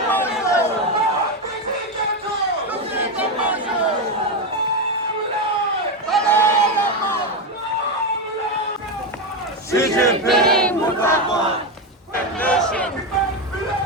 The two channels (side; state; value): both; normal; correlation 0.10